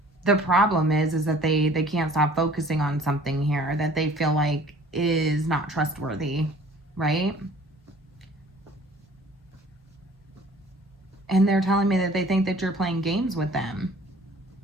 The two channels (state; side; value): normal; both; correlation 0.51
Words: the problem is that they can't stop focusing on something here that they feel like is not trustworthy, right? And they're telling me that they think that you're playing games with them.